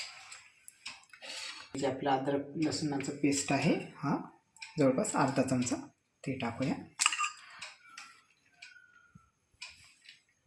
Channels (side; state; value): both; identical; correlation 1.00